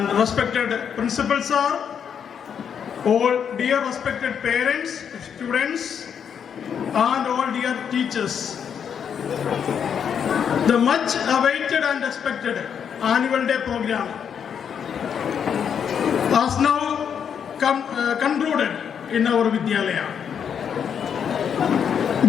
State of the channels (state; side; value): quieter; right; 7.7 dB